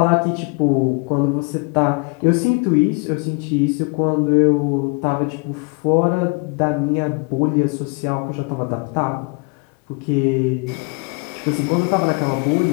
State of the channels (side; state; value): right; quieter; 32.2 dB